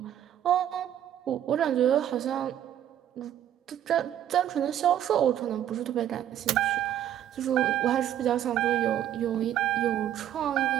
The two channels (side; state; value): left; quieter; 11.0 dB